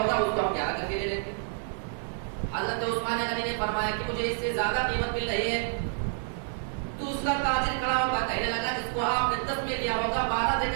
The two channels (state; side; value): silent; left; digital silence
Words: اس کو ہم 11 کر کے لے لیتے. حضرت عثمان غنی نے فرمایا کہ مجھے اس سے زیادہ قیمت مل رہی ہے. دوسرا تاجر کھڑا ہوگا، کہنے لگا جس کو آپ نے 10 میں لیا ہوگا 12 دے